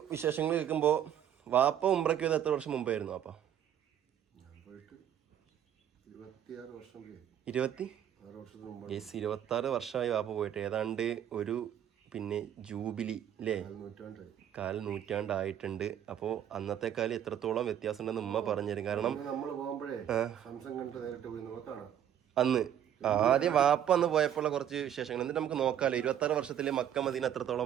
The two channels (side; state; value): left; quieter; 9.9 dB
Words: വിശേഷങ്ങൾ കേൾക്കുമ്പോൾ വാപ്പ ഉംറയ്ക്ക് പോയത് എത്ര വർഷം മുമ്പായിരുന്നു? വാപ്പ 26 വർഷമായി വാപ്പ പോയിട്ട്. ഏതാണ്ട് ഒരു പിന്നെ ജൂബിലി അല്ലേ, 1/4 നൂറ്റാണ്ടായിട്ടുണ്ട്. അപ്പോൾ അന്നത്തെ കാലം എത്രത്തോളം വ്യത്യാസം ഉണ്ടെന്ന് ഉമ്മ പറഞ്ഞുതരും. കാരണം അന്ന് ആദ്യം വാപ്പ അന്ന് പോയപ്പോഴുള്ള കുറച്ച് വിശേഷങ്ങൾ എന്നിട്ട് നമുക്ക് നോക്കാമല്ലോ. 26 വർഷത്തില് മക്ക മദീന